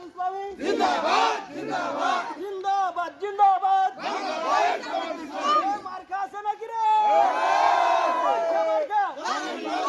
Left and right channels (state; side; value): identical; both; correlation 1.00